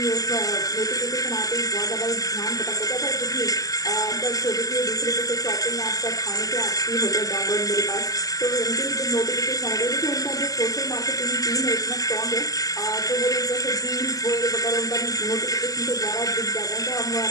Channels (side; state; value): right; late; 0.17 ms